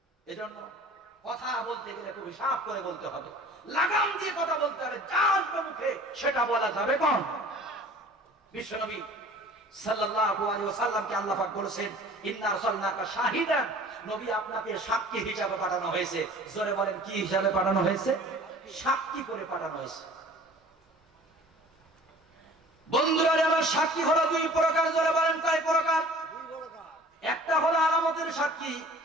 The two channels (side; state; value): both; normal; correlation 0.47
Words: এজন্য কথা বলতে গেলে খুব হিসাব করে বলতে হবে, লাগাম দিয়ে কথা বলতে হবে। যার মুখে সেটা বলা যাবে কোন? বিশ্বনবী সাল্লাল্লাহু আলাইহি ওয়াসাল্লামকে আল্লাহ পাক বলেছেন, ইন্না আরসালনাকা শাহিদান নবী আপনাকে সাক্ষী হিসাবে পাঠানো হয়েছে। জোরে বলেন কি হিসাবে পাঠানো হয়েছে? সাক্ষী করে পাঠানো হয়েছে। বন্ধুরা আমার সাক্ষী হলো দুই প্রকার। জোরে বলেন কয় প্রকার? একটা হলো আলামতের সাক্ষী,